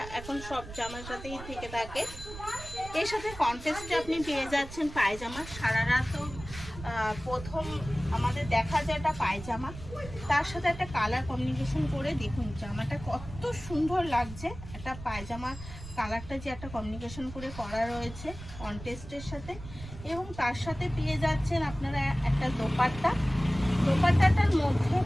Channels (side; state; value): right; noise; rumble, 13 dB below the sound